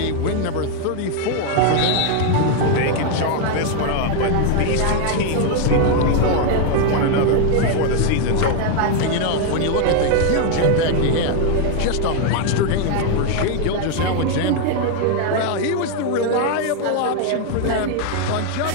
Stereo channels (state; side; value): different; both; correlation 0.00